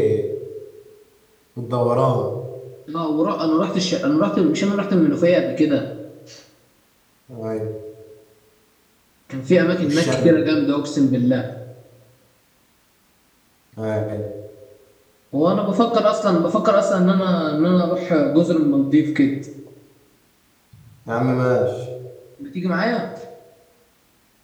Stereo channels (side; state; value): both; identical; correlation 1.00